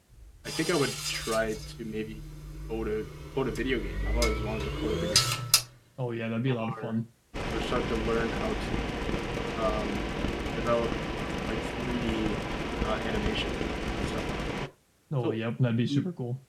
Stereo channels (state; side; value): identical; both; correlation 1.00